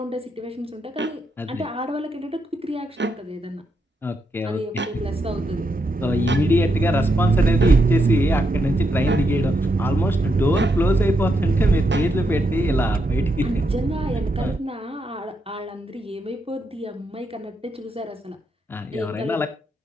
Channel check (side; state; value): both; normal; correlation 0.81